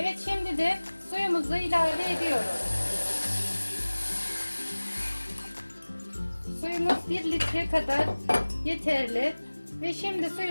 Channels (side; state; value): both; inverted; correlation -1.00